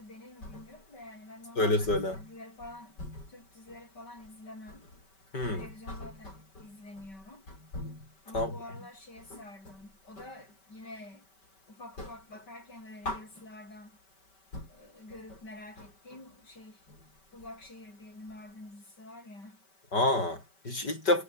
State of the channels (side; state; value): right; late; 5.2 ms